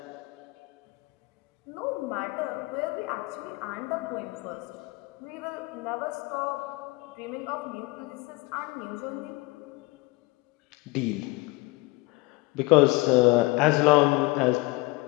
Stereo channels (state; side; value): quieter; right; 23.3 dB